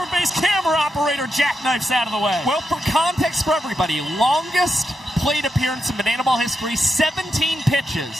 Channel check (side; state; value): both; normal; correlation 0.86